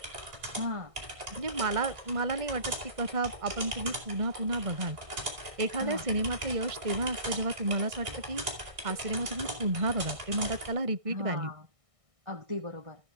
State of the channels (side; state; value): left; late; 1.6 ms